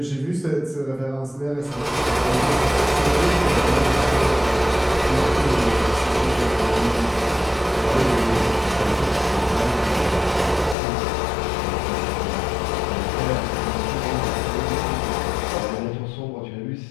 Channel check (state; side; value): drops out; right; at 10.8 s